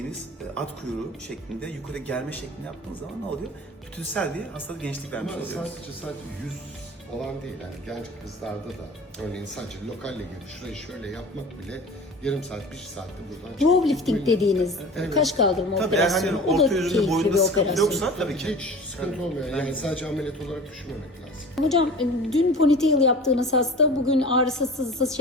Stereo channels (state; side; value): normal; both; correlation 0.39